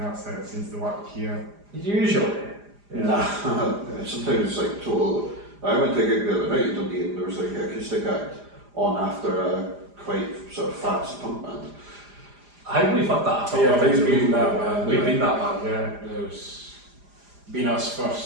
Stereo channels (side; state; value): left; late; 4.9 ms